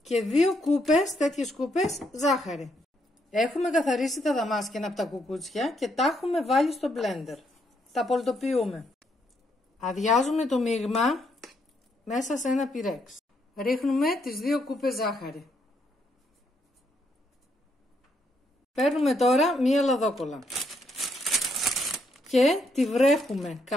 και 2 κούπες, τέτοιες κούπες, ζάχαρη. Έχουμε καθαρίσει τα δαμάσκηνα από τα κουκούτσια και τα έχουμε βάλει στο μπλέντερ. Τα πολτοποιούμε. Αδειάζουμε το μείγμα μέσα σε ένα πυρέξ. Ρίχνουμε τις 2 κούπες ζάχαρη. Παίρνουμε τώρα μία λαδόκολλα και τη βρέχουμε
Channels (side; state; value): both; normal; correlation 0.75